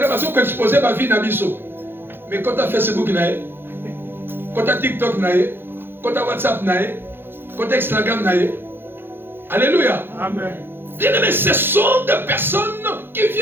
parce qu'on expose ma vie dans biso. Mais quand tu as Facebook, quand tu as TikTok, quand tu as WhatsApp, quand tu as Instagram, alléluia. Amen. Bien aimé, ce sont des personnes qui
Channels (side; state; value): left; late; 0.10 ms